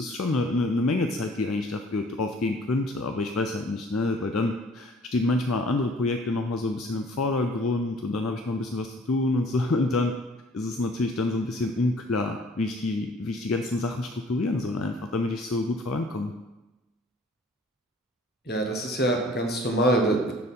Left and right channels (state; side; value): normal; both; correlation 0.54